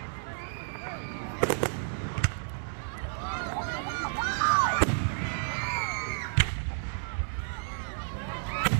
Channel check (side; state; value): left; silent; digital silence